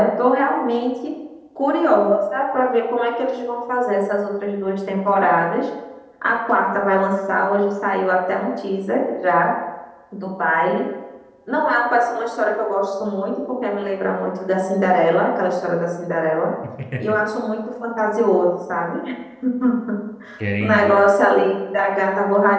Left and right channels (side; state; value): both; identical; correlation 1.00